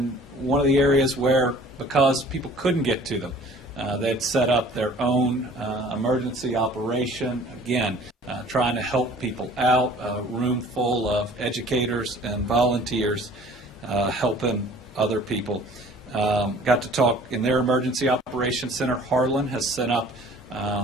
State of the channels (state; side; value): normal; both; correlation 0.50